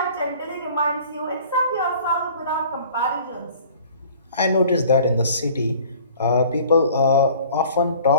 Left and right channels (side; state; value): both; inverted; correlation -0.49